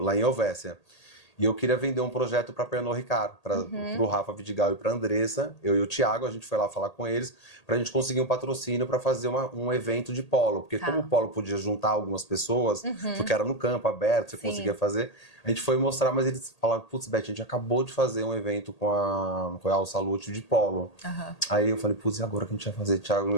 em Helvécia. E eu queria vender um projeto para Pernod Ricard, para o Rafa Vidigal e para a Andressa. Eu e o Thiago, a gente foi lá falar com eles para a gente conseguir um patrocínio para fazer um evento de polo. Porque como o polo podia juntar algumas pessoas, porque era no campo, aberto, você conseguia fazer, a gente foi mostrar, mas eles falaram, putz, Beth, a gente acabou de fazer um evento com a Royal Salute de polo. Aí eu falei, putz, e agora que a gente vai fazer,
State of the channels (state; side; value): late; right; 1.8 ms